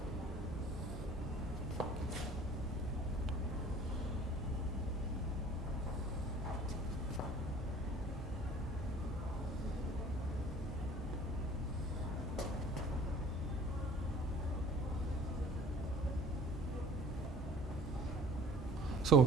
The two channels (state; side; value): normal; both; correlation 0.48